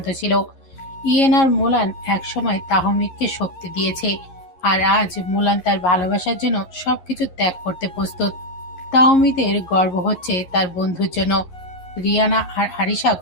ছিল। ইয়েন আর মোলান একসময় তাহমিদকে শক্তি দিয়েছে, আর আজ মোলান তার ভালোবাসার জন্য সবকিছু ত্যাগ করতে প্রস্তুত। তাহমিদের গর্ব হচ্ছে তার বন্ধুর জন্য। রিয়ানা আর আরিশা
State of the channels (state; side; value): late; right; 11 ms